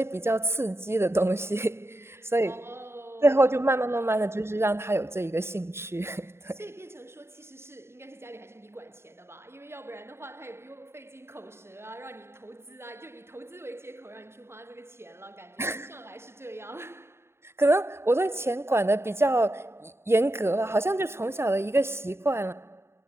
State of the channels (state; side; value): late; left; 0.12 ms